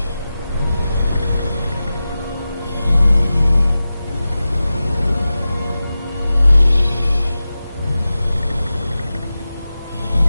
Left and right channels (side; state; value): both; inverted; correlation -0.94